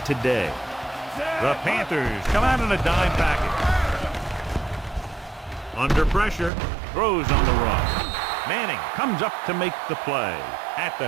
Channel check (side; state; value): left; drops out; at 6.5 s